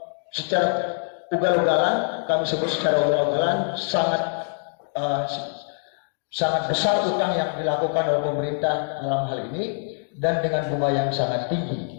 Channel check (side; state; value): right; silent; digital silence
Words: ugal-ugalan. Kami sebut secara ugal-ugalan, sangat besar utang yang dilakukan oleh pemerintah dalam hal ini, dan dengan bunga yang sangat